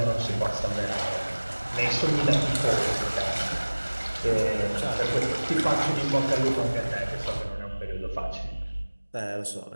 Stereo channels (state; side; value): inverted; both; correlation -1.00